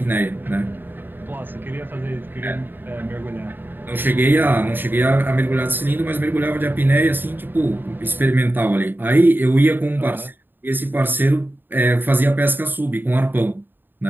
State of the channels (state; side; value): late; left; 0.094 ms